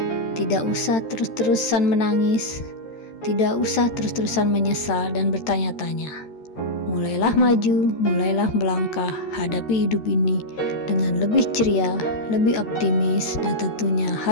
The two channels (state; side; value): late; right; 13 ms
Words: tidak usah terus-terusan menangis, tidak usah terus-terusan menyesal dan bertanya-tanya. Mulailah maju, mulailah melangkah, hadapi hidup ini dengan lebih ceria, lebih optimis, dan tentunya